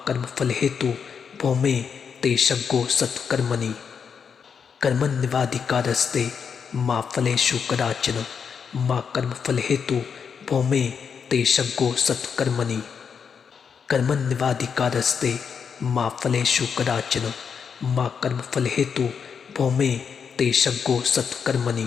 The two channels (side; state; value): right; quieter; 6.6 dB